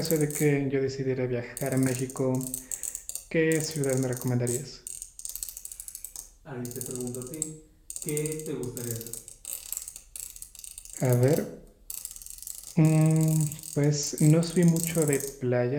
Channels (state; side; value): identical; both; correlation 1.00